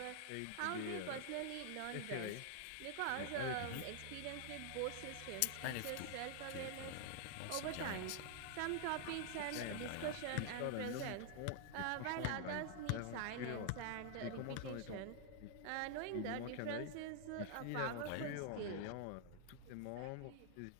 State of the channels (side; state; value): both; different; correlation 0.00